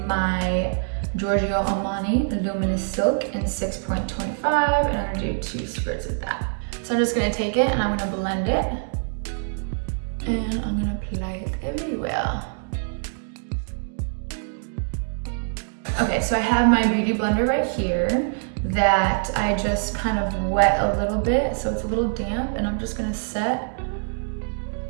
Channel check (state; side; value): silent; left; digital silence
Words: Giorgio Armani Luminous Silk in 6.25, and I'm gonna do 2 squirts of that. So I'm just gonna take it and I'm gonna blend it, and I'm gonna apply it everywhere. Okay, so I have my beauty blender right here that I just kind of wet a little bit, so it's a little damp, and I'm just gonna set